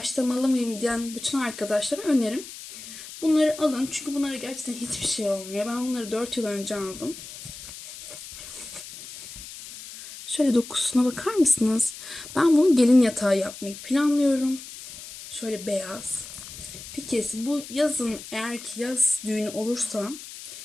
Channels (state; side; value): noise; left; hiss, 13 dB below the sound